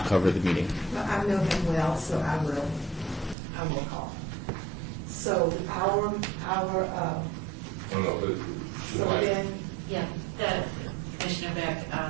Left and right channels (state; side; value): drops out; left; at 3.4 s